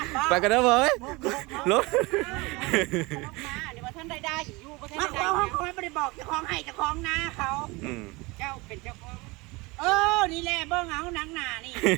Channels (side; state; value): left; quieter; 24.4 dB